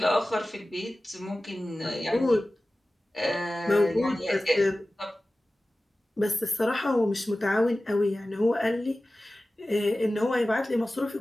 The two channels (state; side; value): normal; both; correlation 0.96